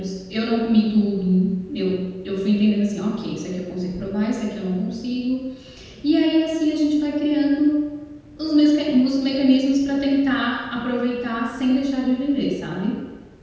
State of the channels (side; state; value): both; identical; correlation 1.00